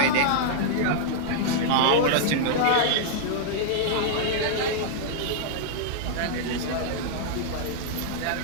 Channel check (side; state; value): both; different; correlation -0.01